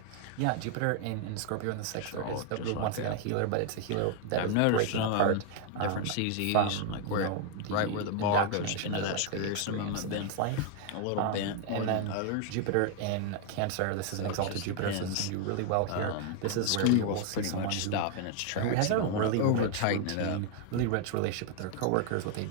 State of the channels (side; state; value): both; different; correlation 0.00